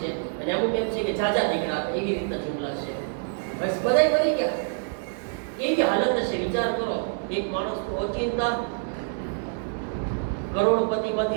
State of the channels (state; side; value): silent; left; 61 dB below the other